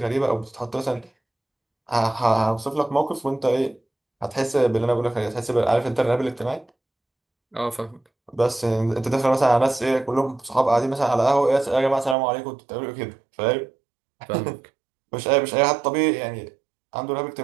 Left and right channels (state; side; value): drops out; left; at 12.2 s